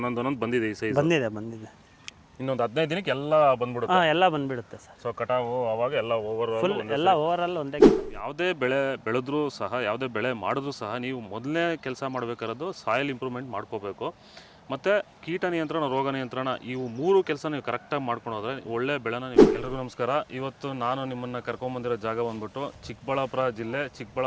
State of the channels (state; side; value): identical; both; correlation 1.00